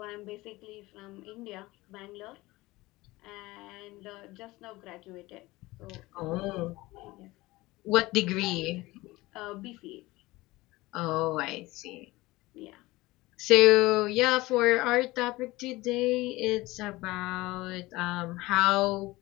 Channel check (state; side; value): quieter; right; 20.1 dB